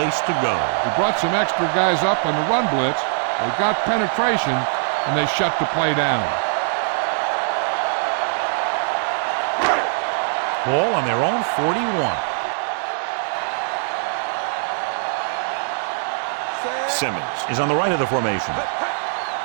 to go. He brought some extra guys up on the run blitz. They got penetration, and they shut the play down. Ball on their own 41. Simmons is on the right of the formation.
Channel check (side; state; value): left; silent; 64 dB below the other